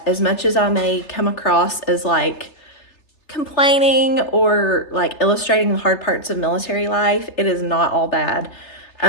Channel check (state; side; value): late; right; 3.3 ms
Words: as much as I may come across as like complaining or like illustrating the hard parts of military life, it is not all bad.